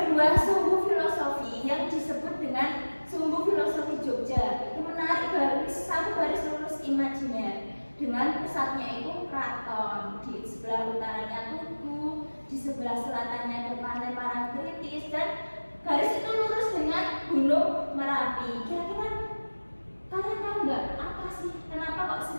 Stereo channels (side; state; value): both; inverted; correlation -1.00